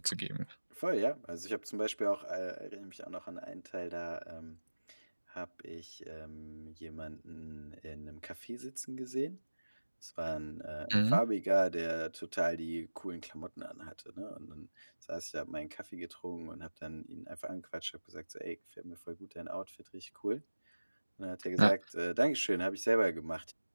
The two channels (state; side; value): inverted; both; correlation -1.00